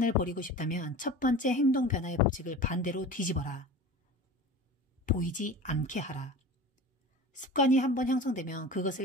버리고 싶다면 첫 번째 행동 변화의 법칙을 반대로 뒤집어라. 보이지 않게 하라. 습관이 한번 형성되면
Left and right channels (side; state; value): both; normal; correlation 0.36